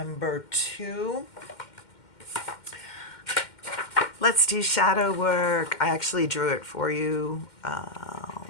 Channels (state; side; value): late; right; 2.1 ms